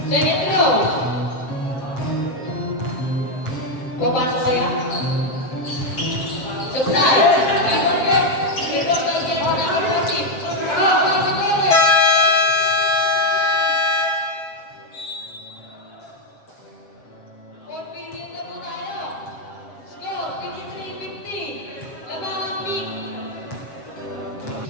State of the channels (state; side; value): late; right; 7.4 ms